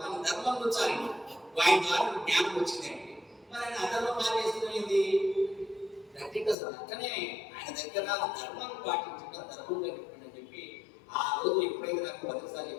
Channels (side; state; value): right; drops out; at 6.6 s